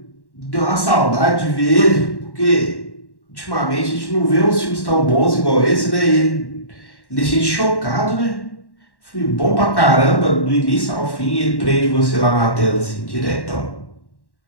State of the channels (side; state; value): right; late; 1.1 ms